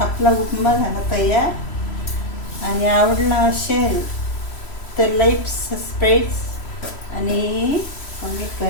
आपला उपमा झाला तयार. आणि आवडला असेल तर लाईक, सबस्क्राईब आणि कमेंट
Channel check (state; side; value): late; right; 3.0 ms